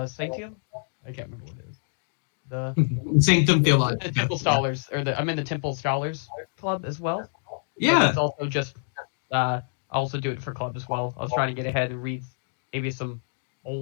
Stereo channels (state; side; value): silent; right; digital silence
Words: Sanctium. I can't remember what it is. The Sanctum Theologica. The Temple Scholars, I'm in the Temple Scholars Club as well. Yeah. It's also just I also do it for club as well. I was trying to get ahead and read maybe some